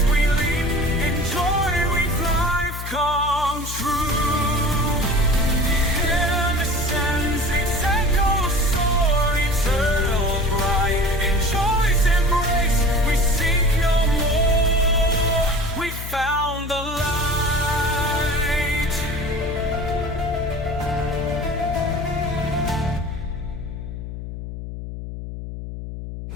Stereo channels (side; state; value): left; noise; hum, 8 dB below the sound